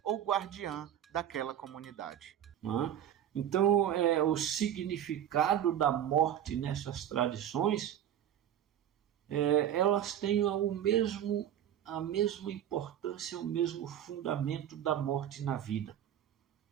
ou guardiã daquela comunidade. Então, o significado da morte nessas tradições, elas têm a mesma importância, o mesmo fundamento da morte na vida.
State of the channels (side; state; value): left; quieter; 10.6 dB